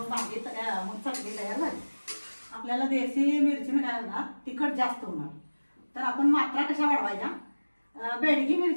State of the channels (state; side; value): inverted; both; correlation -1.00